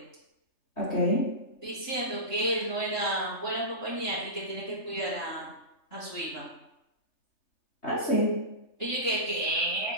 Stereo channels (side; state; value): right; late; 3.3 ms